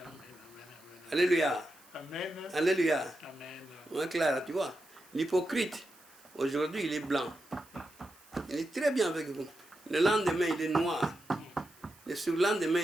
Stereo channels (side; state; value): right; noise; hiss, 25 dB below the sound